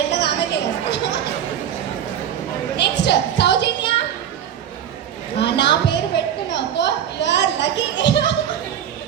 ఎట్లా ఆమె తెలుసు. నెక్స్ట్ సౌజన్య. నా పేరు పెట్టుకున్నావు you are lucky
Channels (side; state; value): left; quieter; 9.6 dB